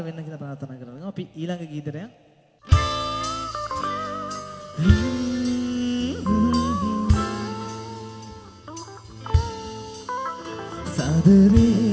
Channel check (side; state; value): both; identical; correlation 1.00